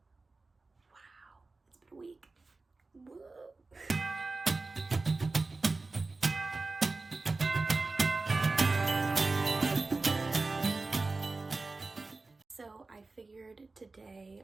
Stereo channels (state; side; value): quieter; left; 3.6 dB